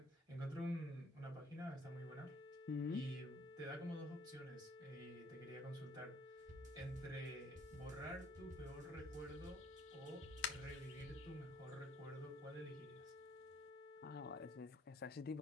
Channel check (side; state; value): both; normal; correlation 0.61